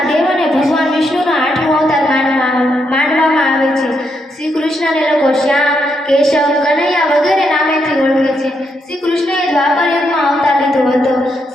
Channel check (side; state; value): both; normal; correlation 0.79